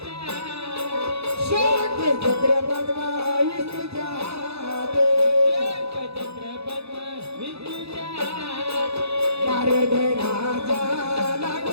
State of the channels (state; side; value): late; left; 0.79 ms